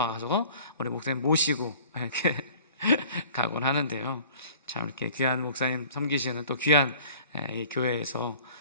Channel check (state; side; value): inverted; both; correlation -0.50